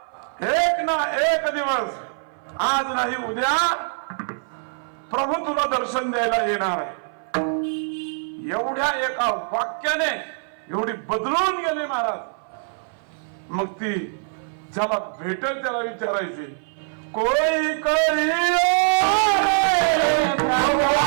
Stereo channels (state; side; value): silent; left; 58 dB below the other